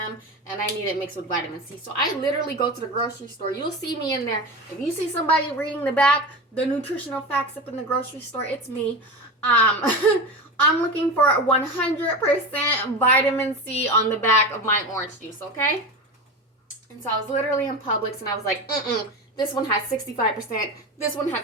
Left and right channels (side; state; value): both; normal; correlation 0.24